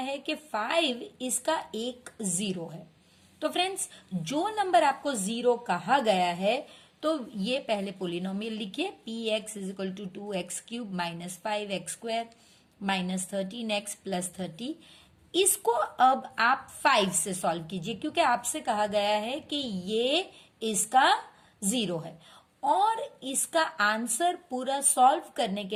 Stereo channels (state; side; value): identical; both; correlation 1.00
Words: है कि 5 इसका एक जीरो है। तो फ्रेंड्स, जो नंबर आपको जीरो कहा गया है तो ये पहले पोलिनोमियल लिखिए, px is equal to 2x³ minus 5x square minus 13x plus 30। इसको अब आप 5 से सॉल्व कीजिए क्योंकि आपसे कहा गया है कि ये इसका जीरो है और इसका आंसर पूरा सॉल्व करने